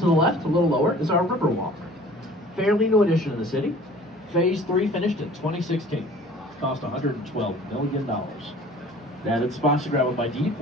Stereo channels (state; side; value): normal; both; correlation 0.48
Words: left, a little lower, is our Riverwalk. Fairly new addition to the city. Phase 3 finished in 2016. Cost $112 million. They added spots to grab a bite to eat